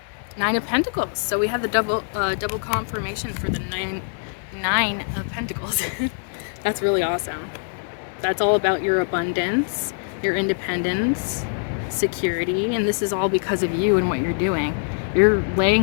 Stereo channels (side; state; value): right; silent; digital silence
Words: Nine of Pentacles. So we have the double confirmation for the nine of Pentacles. That's really awesome. That's all about your abundance, your independence, security, and this is all because of you and what you're doing. You're